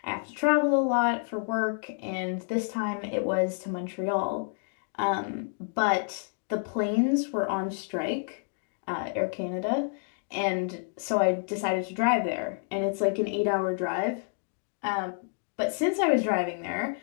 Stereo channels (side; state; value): right; silent; digital silence